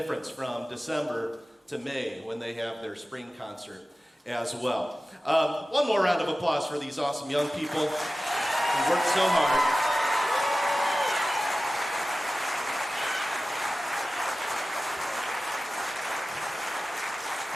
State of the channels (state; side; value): normal; both; correlation 0.95